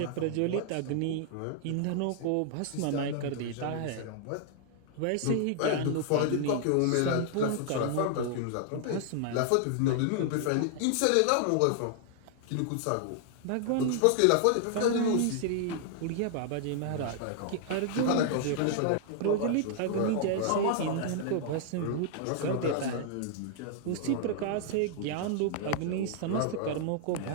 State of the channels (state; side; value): different; both; correlation -0.01